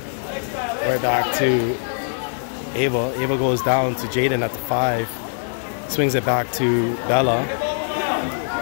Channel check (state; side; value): silent; right; digital silence